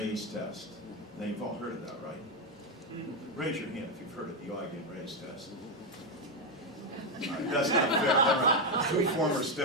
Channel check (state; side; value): normal; both; correlation 0.06